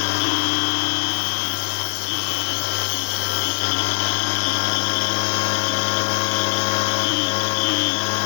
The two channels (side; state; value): right; silent; digital silence